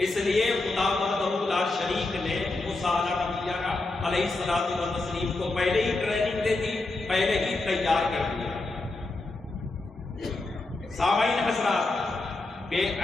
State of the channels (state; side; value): quieter; right; 3.2 dB